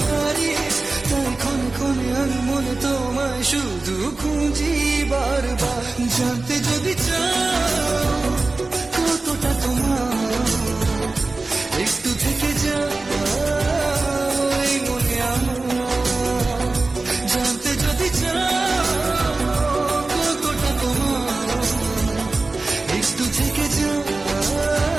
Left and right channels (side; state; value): left; quieter; 3.4 dB